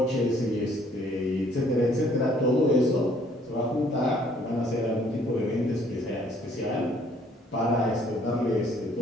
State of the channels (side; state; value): both; normal; correlation 0.61